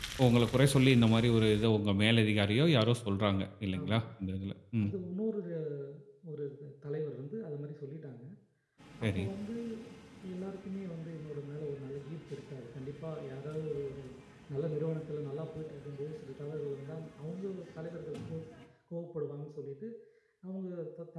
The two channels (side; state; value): both; identical; correlation 1.00